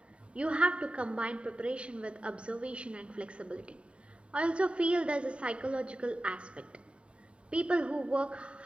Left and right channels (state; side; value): late; left; 0.058 ms